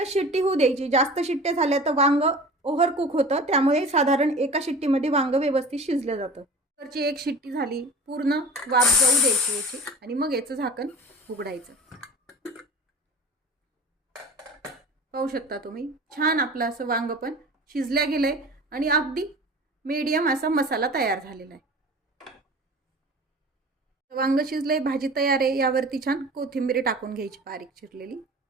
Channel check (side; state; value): both; normal; correlation 0.38